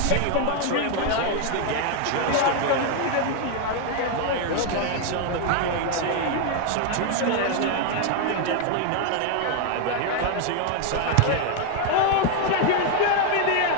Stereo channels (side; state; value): both; different; correlation 0.00